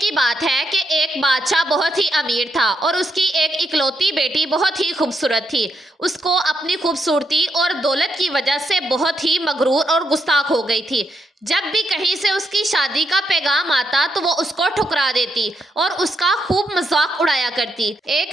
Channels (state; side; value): normal; both; correlation 0.79